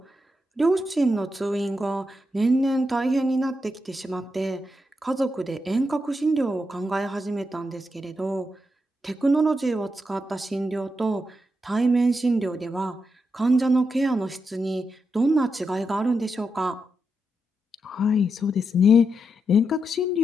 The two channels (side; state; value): both; normal; correlation 0.84